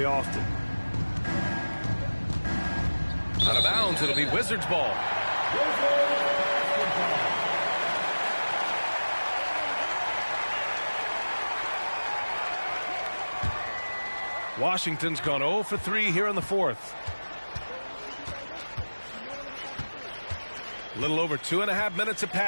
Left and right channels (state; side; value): inverted; both; correlation -1.00